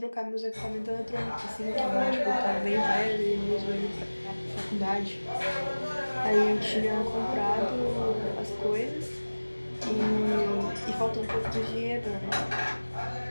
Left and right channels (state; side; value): inverted; both; correlation -1.00